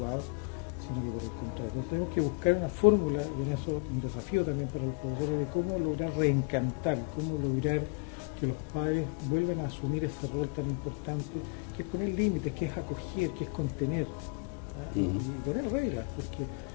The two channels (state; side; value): quieter; right; 30.7 dB